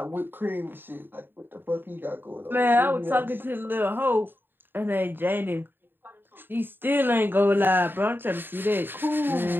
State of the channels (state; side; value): late; left; 0.096 ms